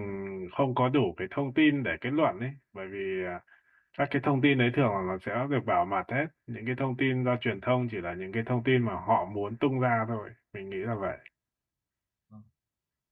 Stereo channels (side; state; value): both; identical; correlation 1.00